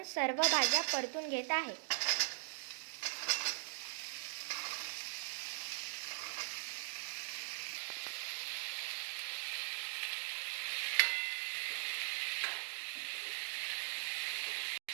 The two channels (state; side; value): silent; left; digital silence